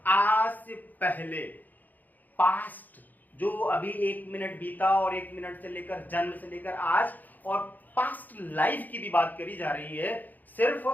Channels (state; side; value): late; right; 0.084 ms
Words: आज से पहले। पास्ट जो अभी 1 मिनट बीता और 1 मिनट से लेकर जन्म से लेकर आज, और पास्ट लाइफ की भी बात करी जा रही है।